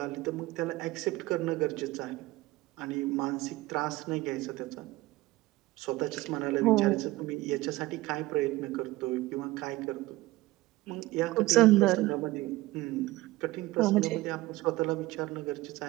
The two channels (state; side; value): quieter; left; 18.8 dB